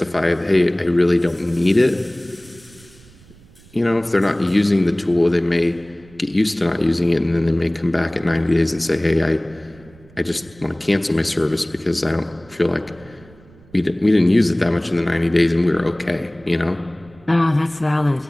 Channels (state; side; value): noise; right; rumble, 25 dB below the sound